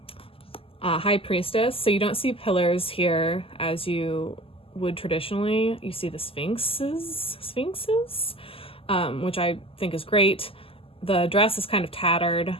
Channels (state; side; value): late; right; 0.26 ms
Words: High Priestess. So you don't see pillars here as you would traditionally. You see the sphinxes, which I think is great. The dress is kind of tattered,